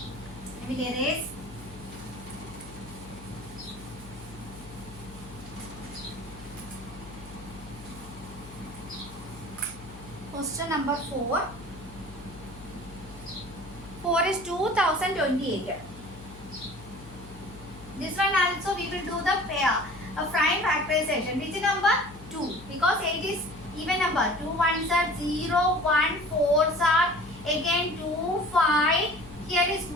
will erase. Question number 4. 4 is 2028. This one also we will do the prime factorization. Which number? 2. Because 8 is even number. 2 ones are 0, 1, 4s are again 2, 5. Here is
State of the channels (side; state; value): left; noise; hum, 17 dB below the sound